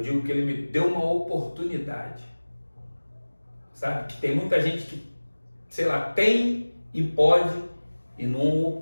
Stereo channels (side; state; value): both; inverted; correlation -1.00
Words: digo que ele me deu uma oportunidade. Sabe? Que tem muita gente que, sei lá, tem e pode e não